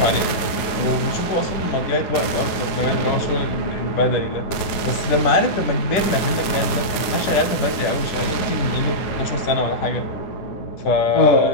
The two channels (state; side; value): late; right; 9.4 ms